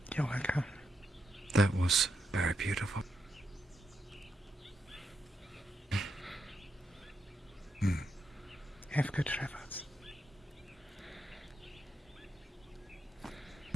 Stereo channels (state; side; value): normal; both; correlation 0.83